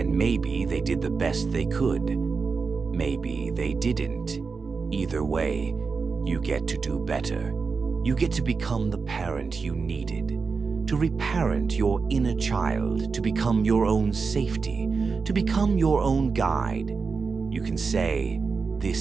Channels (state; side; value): quieter; left; 4.9 dB